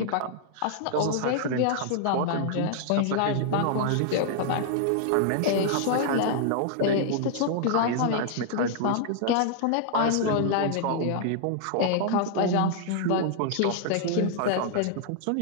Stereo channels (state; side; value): different; both; correlation -0.01